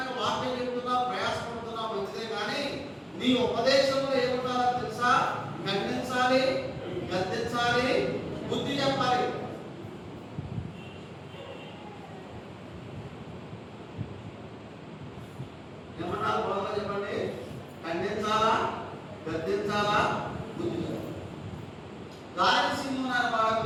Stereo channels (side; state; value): both; identical; correlation 1.00